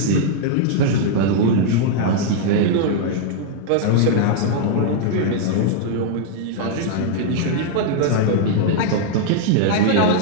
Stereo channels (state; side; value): different; both; correlation -0.01